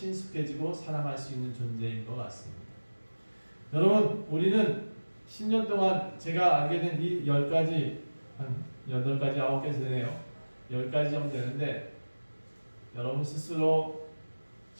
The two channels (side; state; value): both; inverted; correlation -1.00